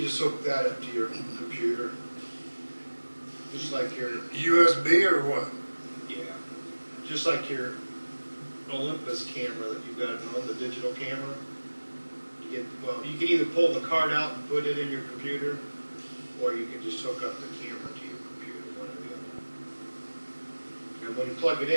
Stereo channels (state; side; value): inverted; both; correlation -1.00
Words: just hook that up to your computer. Just like your, USB or what? yeah, just like your Olympus camera that you've got at home, the digital camera. Well, you can either pull the card out and put it in your computer, or you can just hook up the camera to your computer, one or the other. And when you plug it